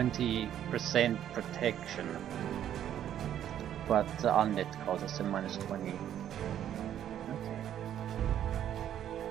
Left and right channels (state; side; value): quieter; left; 10.6 dB